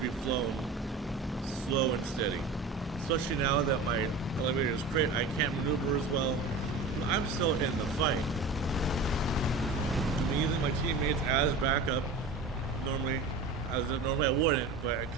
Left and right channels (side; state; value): left; quieter; 3.6 dB